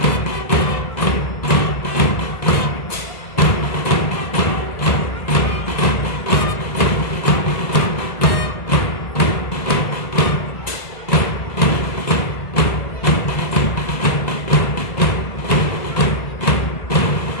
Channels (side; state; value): right; late; 1.9 ms